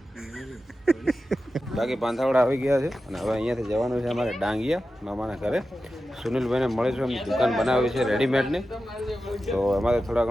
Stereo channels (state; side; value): normal; both; correlation 0.92